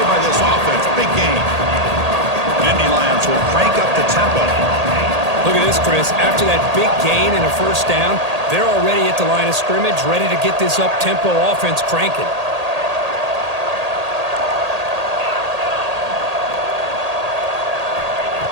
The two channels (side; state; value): left; late; 1.8 ms